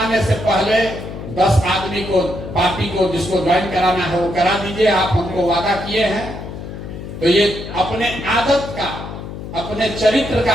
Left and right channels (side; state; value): left; noise; hum, 10 dB below the sound